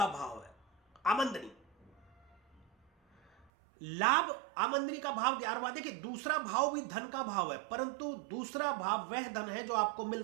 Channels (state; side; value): drops out; left; at 3.5 s